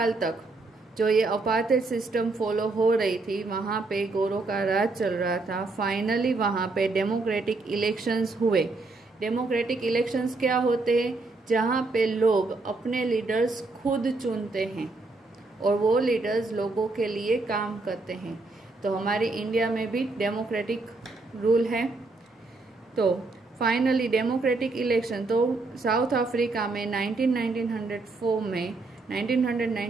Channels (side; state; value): left; quieter; 3.4 dB